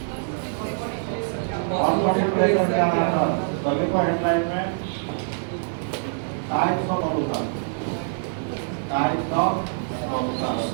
ऑस्मोटिक प्रेशर के आधार पर। तो देखो हेडलाइन में types of solution, types of solution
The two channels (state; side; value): silent; left; 58 dB below the other